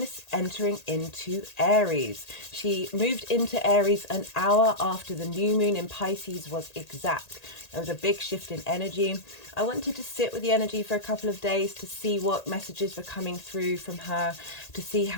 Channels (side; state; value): right; late; 1.8 ms